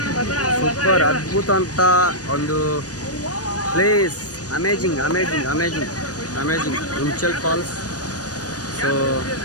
super, ಅದ್ಭುತ ಅಂತ ಒಂದು place. Amazing amazing amazing amazing Hunchal falls. So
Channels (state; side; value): late; right; 0.68 ms